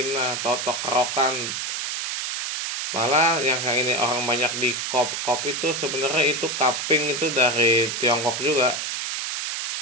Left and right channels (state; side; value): noise; right; hiss, 3 dB below the sound